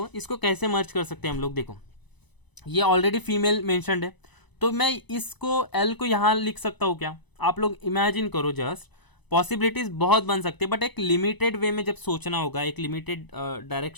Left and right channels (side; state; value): right; late; 1.0 ms